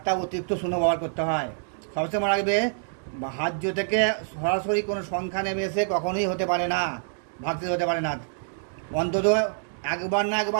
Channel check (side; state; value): left; silent; digital silence